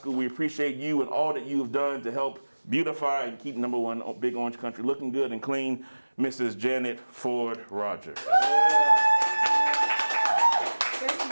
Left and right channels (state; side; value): inverted; both; correlation -1.00